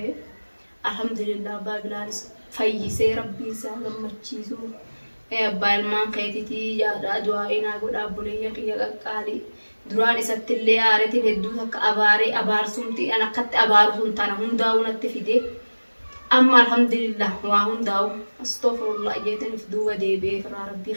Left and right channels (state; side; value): inverted; both; correlation -1.00